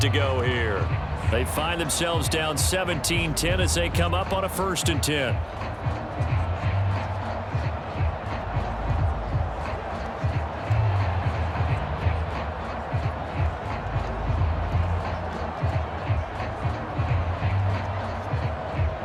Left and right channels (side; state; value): both; identical; correlation 1.00